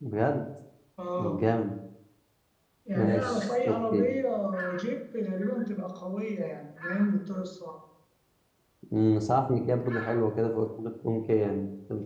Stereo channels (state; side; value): identical; both; correlation 1.00